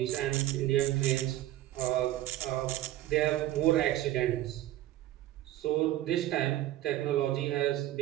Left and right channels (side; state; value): left; quieter; 14.5 dB